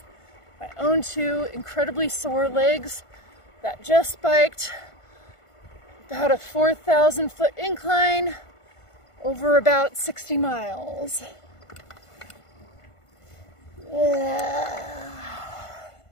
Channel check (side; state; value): right; late; 1.5 ms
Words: My own 2 incredibly sore legs that just biked about a 4,000 foot incline over about 60 miles. Yeah.